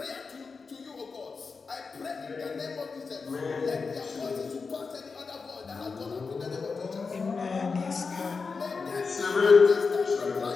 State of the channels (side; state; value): right; quieter; 4.8 dB